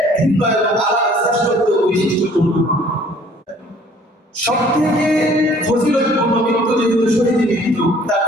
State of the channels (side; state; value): both; normal; correlation 0.56